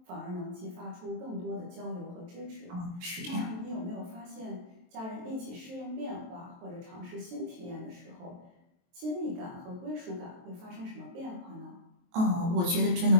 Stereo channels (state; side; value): late; left; 23 ms